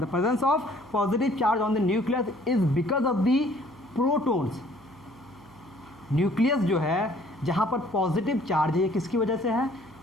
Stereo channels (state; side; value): noise; right; hum, 25 dB below the sound